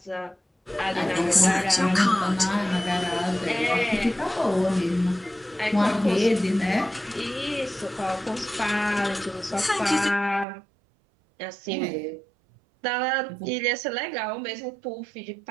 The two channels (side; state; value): left; drops out; at 10.5 s